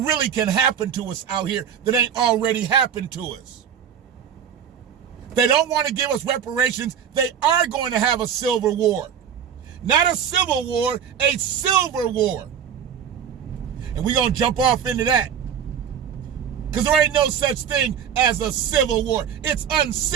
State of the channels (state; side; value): quieter; left; 8.2 dB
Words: can happen to us out here that ain't already happened to us? They don't want to give us reparations. They are going to have a silver war. Not a civil war, a silver war. And we're going to jump off into that. Because there ain't no such thing as a civil war. It's